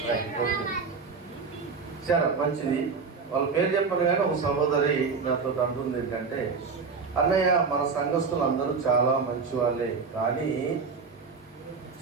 సరే, మంచిది. వాళ్ళ పేరు చెప్పను కానీ ఒక సహోదరి నాతో అంటుంది ఏంటంటే, అన్నయ్య మన సంఘస్థులు అందరూ చాలా మంచి వాళ్ళే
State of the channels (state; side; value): quieter; left; 5.1 dB